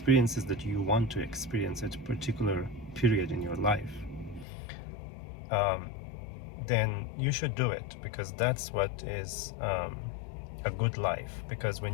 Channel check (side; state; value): right; drops out; at 4.5 s